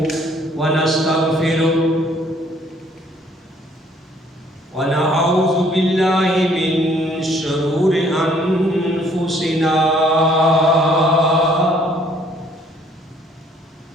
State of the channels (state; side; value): normal; both; correlation 0.61